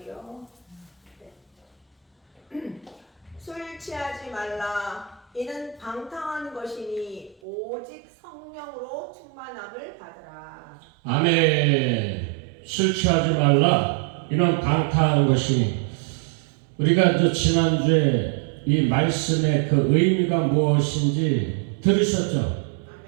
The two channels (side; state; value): left; drops out; at 7.4 s